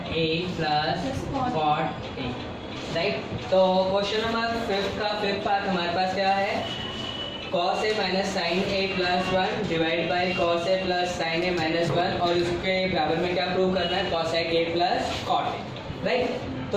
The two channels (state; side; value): identical; both; correlation 1.00